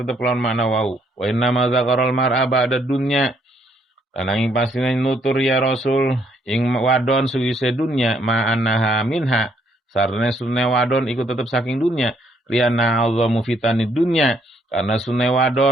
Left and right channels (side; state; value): both; normal; correlation 0.69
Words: tetep lawan makna wau wa inna ma zakarul mar'a ba'da dunya lan ing pasine nutur ya rasul ing wadon suwise dunya ma annaha minha sarane sunne wadon iku tetep saking dunya liana azamu fitani dunya karena sunne